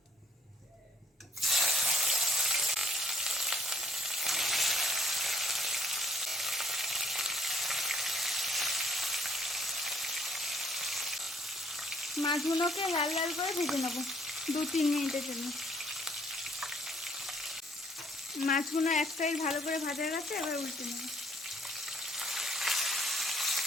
মাছগুলোকে লাল লাল করে ভেজে নেব 2-3 মিনিটের জন্য। মাছগুলো এক সাইড ভালো করে ভাজা গেছে। এবার উল্টে নেব।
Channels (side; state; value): both; normal; correlation 0.64